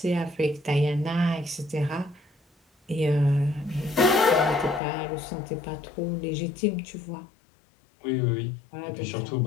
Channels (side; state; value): right; drops out; at 4.8 s